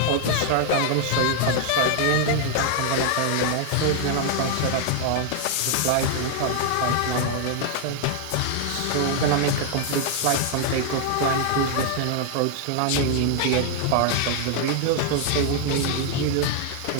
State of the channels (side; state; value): both; different; correlation 0.00